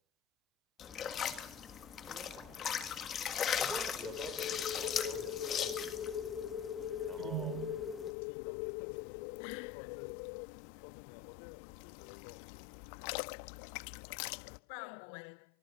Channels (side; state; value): right; drops out; at 8.2 s